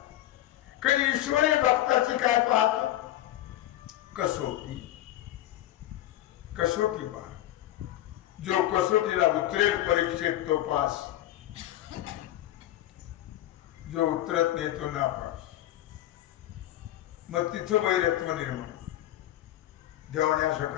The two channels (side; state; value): right; quieter; 14.1 dB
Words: कधी ईश्वरी भक्ताची काय पाहतो? कसोटी. कसोटी पाहतो. जो कसोटीला उतरेल परीक्षेत तो पास, जो उतरत नाही तो नापास. मग तिथं वैरत्व निर्माण. देवाने असं